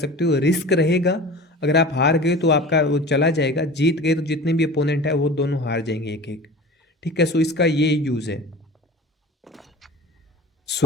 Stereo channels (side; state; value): both; normal; correlation 0.37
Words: हो। रिस्क रहेगा, अगर आप हार गए तो आपका वो चला जाएगा, जीत गए तो जितने भी अपोनेंट है वो दोनों हार जाएंगे एक एक। ठीक है, सो इसका ये यूज़ है।